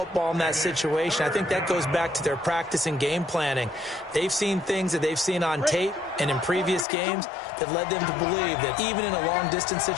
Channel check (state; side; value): drops out; right; at 6.9 s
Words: in that situation. I think that goes back to their practice and game planning. They've seen things that they've seen on tape and in previous games that led them to believe that even in a long-distance